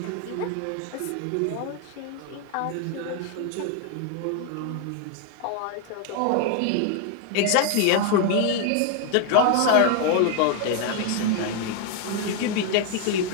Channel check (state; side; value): different; both; correlation 0.00